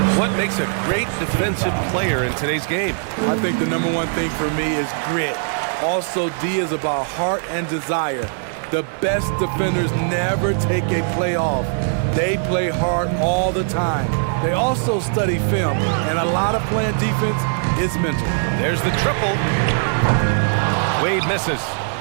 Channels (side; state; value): left; silent; digital silence